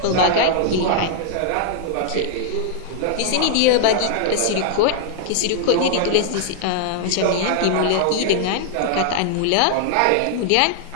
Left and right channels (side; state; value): both; different; correlation 0.00